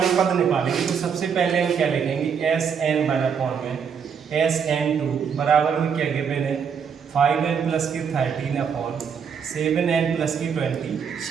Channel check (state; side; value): quieter; left; 6.9 dB